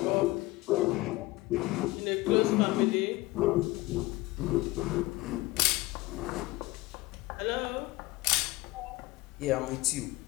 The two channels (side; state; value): right; quieter; 20.3 dB